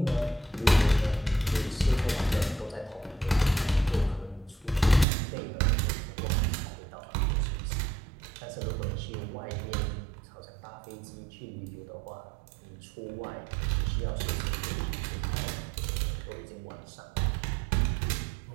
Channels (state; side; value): drops out; left; at 5.1 s